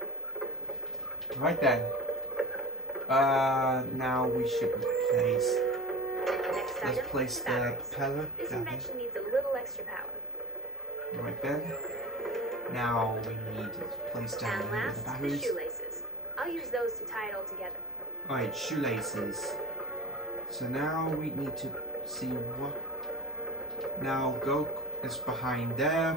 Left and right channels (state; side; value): normal; both; correlation 0.33